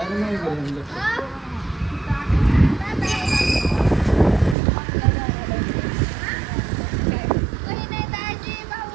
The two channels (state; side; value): drops out; left; at 4.5 s